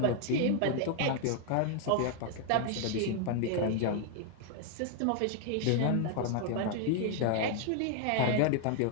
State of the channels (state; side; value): different; both; correlation 0.00